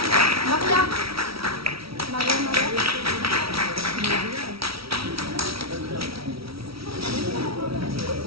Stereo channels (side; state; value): left; late; 0.75 ms